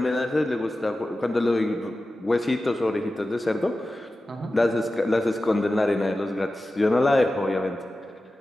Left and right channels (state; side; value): normal; both; correlation 0.94